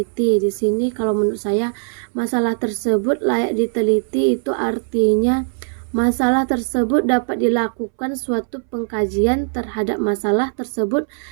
Di sini kalau menurut saya masalah tersebut layak diteliti itu artinya masalah tersebut dapat dilakukan suatu pengkajian terhadap masalah tersebut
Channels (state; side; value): silent; left; 63 dB below the other